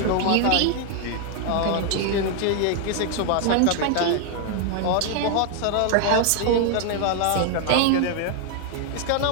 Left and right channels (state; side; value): different; both; correlation 0.00